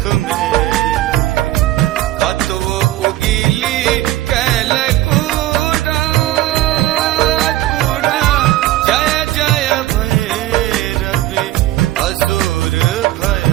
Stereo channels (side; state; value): left; quieter; 15.4 dB